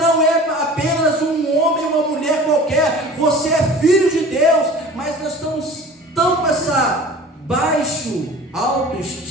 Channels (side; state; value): both; normal; correlation 0.41